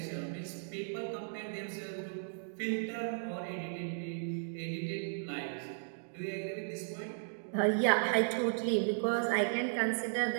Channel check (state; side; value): silent; left; digital silence